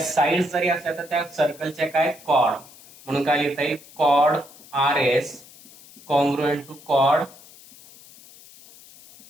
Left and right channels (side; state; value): left; noise; hiss, 22 dB below the sound